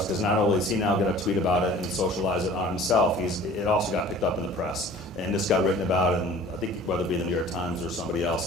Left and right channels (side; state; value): both; normal; correlation 0.47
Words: because not only is he now going to tweet about it and socialize it on himself, it also got picked up in the press and this got written about in, I think, whether it be the New York Times or somebody